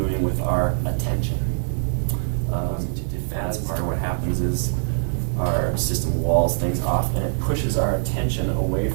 with our attention. That's part of what happens is our system walls things off and it pushes our attention away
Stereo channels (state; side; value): silent; left; 63 dB below the other